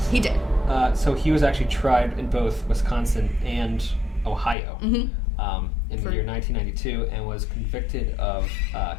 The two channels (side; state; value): right; drops out; at 4.5 s